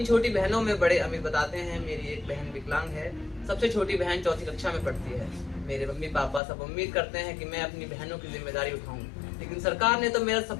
छोटी बहनों में बड़े अमीर बताते हैं, मेरी एक बहन विकलांग है, सबसे छोटी बहन 4ठी कक्षा में पढ़ती है। मेरे मम्मी पापा सब उम्मीद करते हैं कि मैं अपनी बहनों की जिम्मेदारी उठाऊं, लेकिन सरकार ने तो मेरा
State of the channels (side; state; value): right; drops out; at 6.4 s